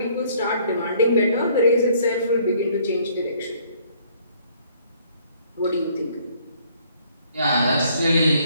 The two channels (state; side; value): inverted; both; correlation -0.61